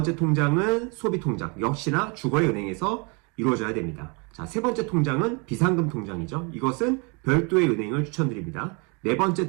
통장은 소비 통장. 역시나 주거래 은행에서 이루어져야 됩니다. 자, 세 번째 통장은 비상금 통장이죠. 이것은 별도의 은행을 추천드립니다. 네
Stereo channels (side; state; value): left; quieter; 32.5 dB